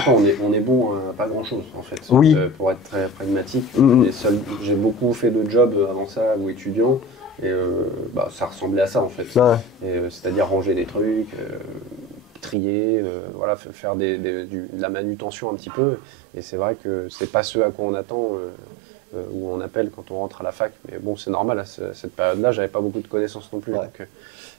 On est bon à pas grand chose en fait. Pour être très pragmatique. J'ai beaucoup fait de jobs avant ça ou étudiant. Et ça ressemblait à ça en fait. C'est-à-dire ranger des trucs, trier, faire de la manutention un petit peu. Et c'est vrai que c'est pas ce à quoi on attend ou on appelle quand on rentre à la fac. Mais bon, c'est normal, à cette période-là, j'avais pas beaucoup de connaissances non plus.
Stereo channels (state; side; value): drops out; left; at 12.6 s